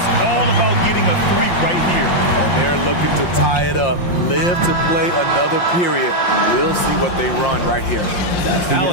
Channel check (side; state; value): right; late; 5.7 ms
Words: all about getting a three right here. And they're looking to tie it up. Live to play another period. We'll see what they run right here.